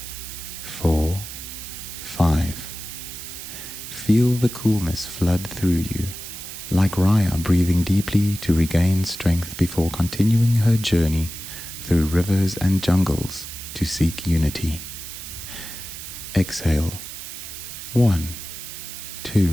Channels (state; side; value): noise; right; hiss, 10 dB below the sound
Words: 4, 5. Feel the coolness flood through you, like Raya breathing deeply to regain strength before continuing her journey through rivers and jungles to seek unity. Exhale. 1,